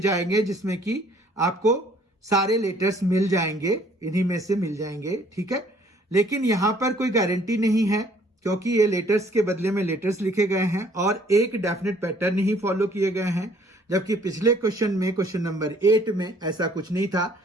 जिसमें कि आपको सारे लेटर्स मिल जाएंगे, इन्हीं में से मिल जाएंगे, ठीक है। लेकिन यहां पर कोई गारंटी नहीं है, क्योंकि ये लेटर्स के बदले में लेटर्स लिखे गए हैं और एक डेफिनेट पैटर्न ही फॉलो किए गए हैं। जबकि पिछले क्वेश्चन में, क्वेश्चन नंबर 8 में ऐसा कुछ नहीं था,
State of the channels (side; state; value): both; normal; correlation 0.59